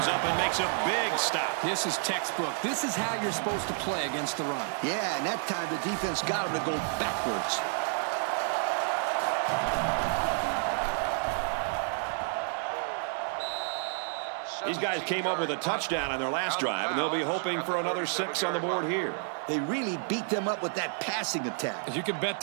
up and makes a big stop. This is textbook. This is how you're supposed to play against the run. Yeah, and that time the defense got him to go backwards. These guys came up with a touchdown on their last drive, and they'll be hoping for another 6 on the board here. They really beat them up with that passing attack. You can bet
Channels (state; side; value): silent; left; 58 dB below the other